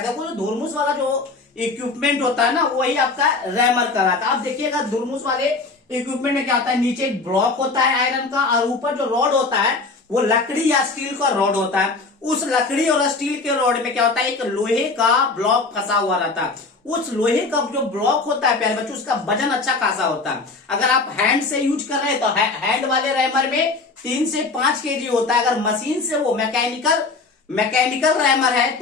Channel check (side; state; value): right; quieter; 3.8 dB